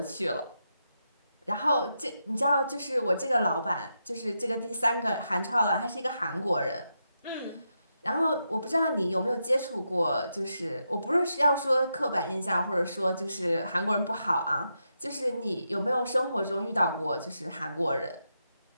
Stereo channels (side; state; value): both; inverted; correlation -0.85